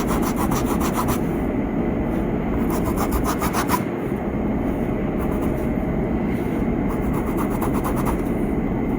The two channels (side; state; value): both; identical; correlation 1.00